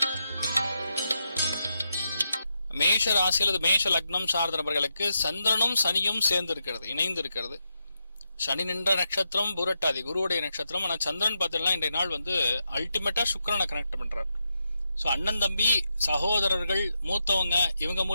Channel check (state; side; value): inverted; both; correlation -0.85